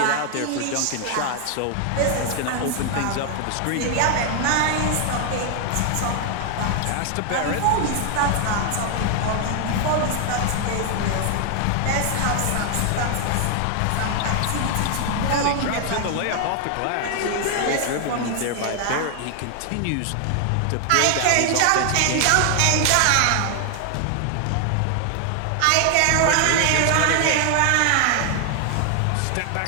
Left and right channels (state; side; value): different; both; correlation 0.00